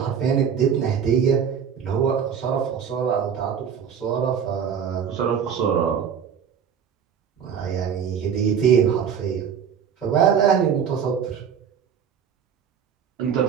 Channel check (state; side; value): quieter; left; 7.6 dB